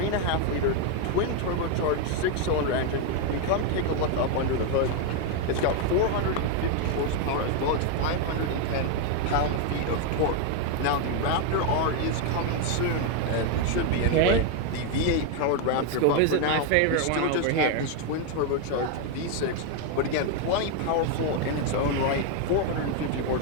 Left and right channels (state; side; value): different; both; correlation 0.01